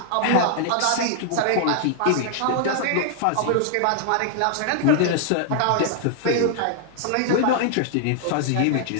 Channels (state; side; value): different; both; correlation 0.00